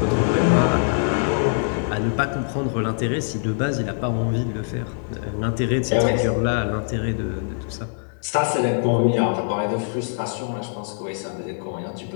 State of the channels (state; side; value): silent; right; digital silence